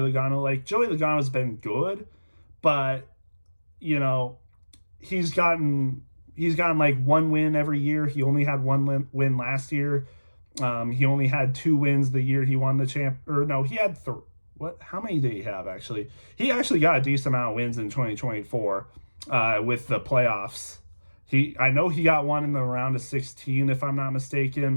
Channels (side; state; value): both; inverted; correlation -1.00